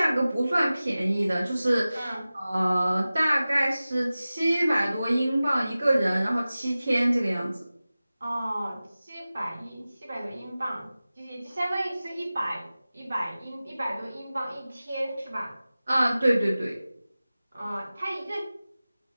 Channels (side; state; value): both; inverted; correlation -0.96